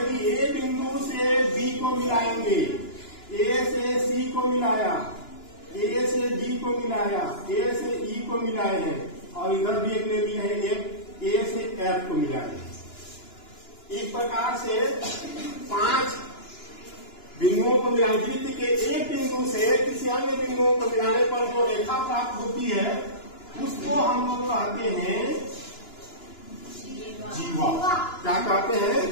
ए बिंदु से बी को मिलाएंगे, ए से सी को मिलाया, ए से डी को मिलाया, ए से ई को मिलाए हैं और इधर भी एक ले लिए हैं, एक ए से एफ को मिलाए। इस प्रकार से 5 बिंदुओं को मिलाने, वृत्त के एक बिंदु से किसी अन्य बिंदुओं को मिलाने पर जो रेखा प्राप्त होती है उसको हम लोग कहते हैं जीवा। क्या कहते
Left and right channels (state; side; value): late; right; 2.9 ms